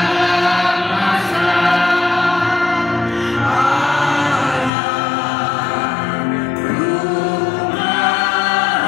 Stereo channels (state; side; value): drops out; right; at 4.7 s